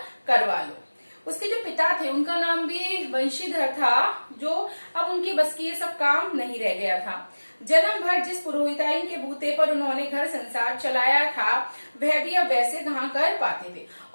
करवा लूं। उसके जो पिता थे उनका नाम भी वंशीधर था, जो अब उनकी बस की ये सब काम नहीं रह गया था। जन्म भर जिस पुरोहिताइन के बूते पर उन्होंने घर संसार चलाया था वह भी अब वैसे कहाँ कर पाते थे।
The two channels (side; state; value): both; inverted; correlation -1.00